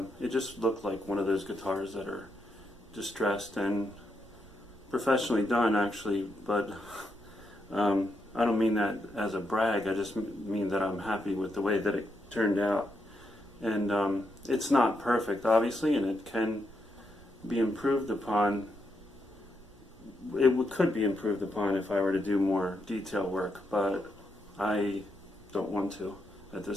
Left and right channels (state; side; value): noise; right; rumble, 22 dB below the sound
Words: it just looked like one of those guitars that are distressed and professionally done, actually. But I don't mean that as a brag. I just mean that I'm happy with the way that it turned out. And it's not perfect, obviously, and it can be improved upon. It could be improved upon if I were to do more detail work, but I don't want to at